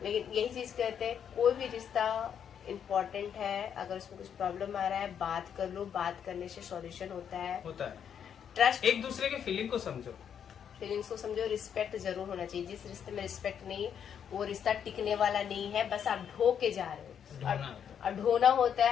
लेकिन यही चीज कहते हैं, कोई भी रिश्ता इम्पोर्टेंट है, अगर उसमें कुछ प्रॉब्लम आ रहा है बात कर लो, बात करने से सॉल्यूशन होता है। ट्रस्ट, एक दूसरे के फीलिंग को समझो, फीलिंग्स को समझो, रिस्पेक्ट जरूर होना चाहिए। जिस रिश्ते में रिस्पेक्ट नहीं, वो रिश्ता टिकने वाला नहीं है, बस आप ढो के जा रहे हो और ढोना होता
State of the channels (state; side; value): quieter; right; 8.3 dB